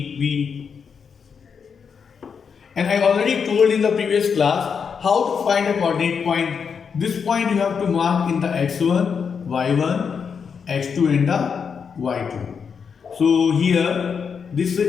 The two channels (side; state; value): right; quieter; 6.4 dB